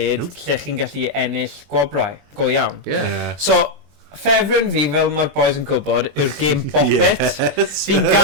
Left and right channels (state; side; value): late; left; 21 ms